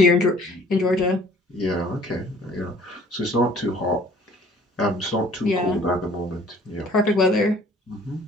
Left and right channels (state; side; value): normal; both; correlation 0.54